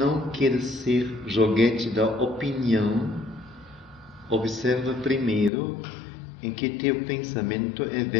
quer ser joguete da opinião, observa primeiro em que teu pensamento é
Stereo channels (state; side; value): drops out; right; at 5.5 s